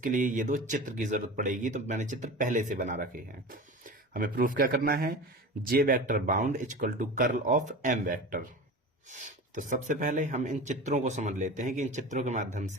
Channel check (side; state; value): both; normal; correlation 0.32